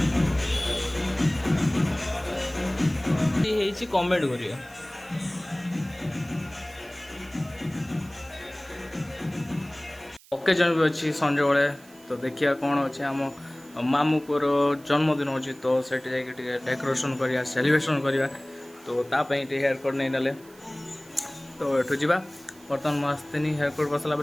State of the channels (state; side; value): noise; right; hiss, 25 dB below the sound